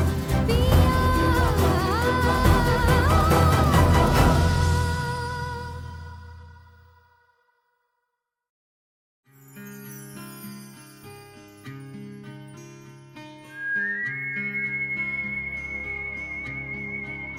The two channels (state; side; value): identical; both; correlation 1.00